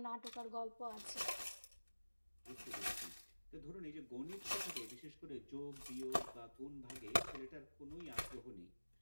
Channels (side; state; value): both; inverted; correlation -1.00